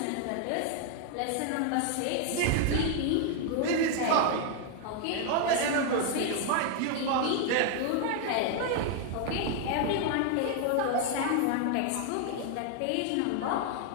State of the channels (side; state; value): both; different; correlation 0.00